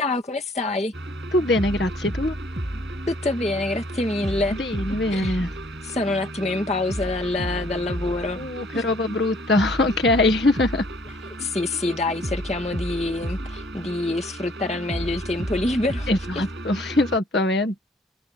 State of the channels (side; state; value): both; normal; correlation 0.60